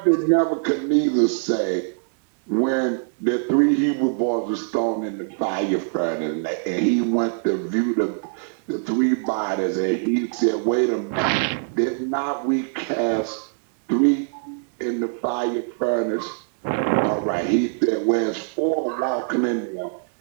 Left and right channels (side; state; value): left; silent; digital silence